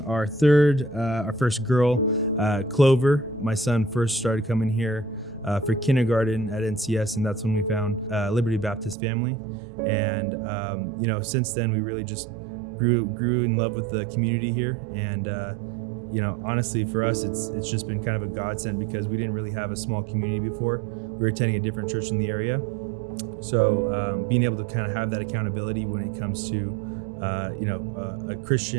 our first girl, Clover. My son first started coming here for kindergarten at NCS, and that's when we found Liberty Baptist Family. And since then we really just grew in love with the community here. And honestly, for us, it's just been kind of a godsend because we didn't really have a small community before. We were attending a different church in the area, so being able to kind of have that accountability when it comes to a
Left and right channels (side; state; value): left; drops out; at 9.0 s